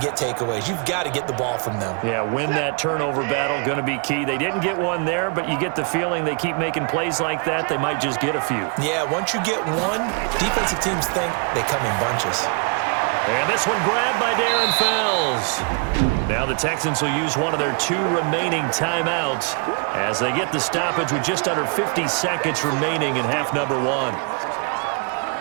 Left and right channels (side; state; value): left; quieter; 38.2 dB